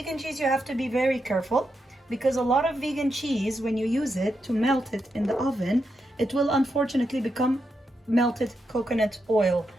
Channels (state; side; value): normal; both; correlation 0.84